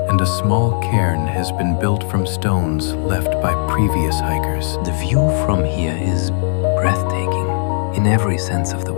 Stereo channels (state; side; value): silent; right; digital silence